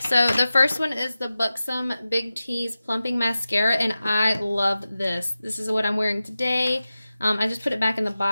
the first one is the Buxom Big T's Plumping Mascara, and I love this. This is what I'm wearing today. I just put it back in the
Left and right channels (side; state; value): both; inverted; correlation -0.94